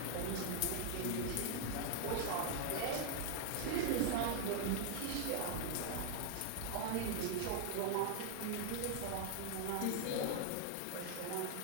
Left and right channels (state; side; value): different; both; correlation 0.00